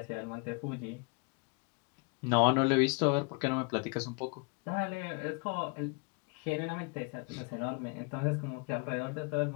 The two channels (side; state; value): right; quieter; 32.2 dB